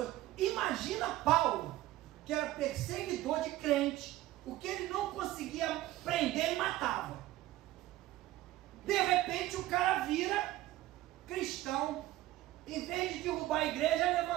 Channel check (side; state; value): left; quieter; 15.8 dB